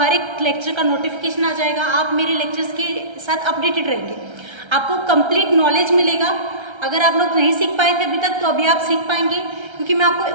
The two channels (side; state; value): left; late; 1.3 ms